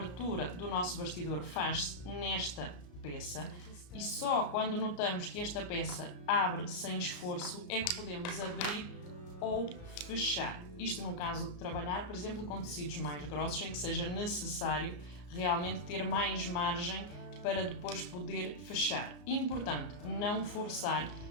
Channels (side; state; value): right; late; 34 ms